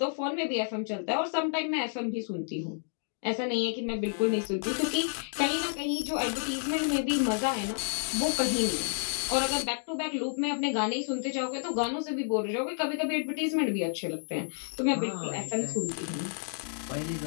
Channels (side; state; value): right; silent; digital silence